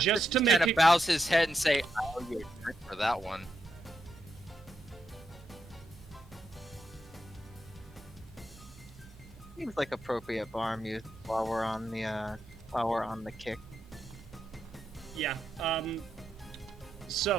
Just to He make kind it of bows his head and say, "Oh, you're good for that one." Seems like appropriate bar music while we're on the kick. Yeah,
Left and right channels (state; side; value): normal; both; correlation 0.83